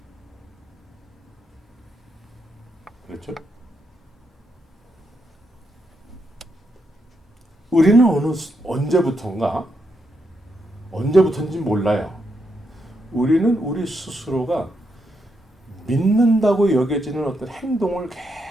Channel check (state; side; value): normal; both; correlation 0.81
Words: 그렇죠? 우리는 언제부터인지 몰라요. 우리는 우리 스스로가 믿는다고 여겨지는 어떤 행동을